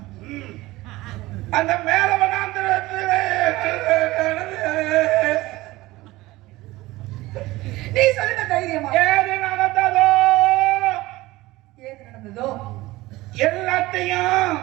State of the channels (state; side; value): quieter; left; 19.0 dB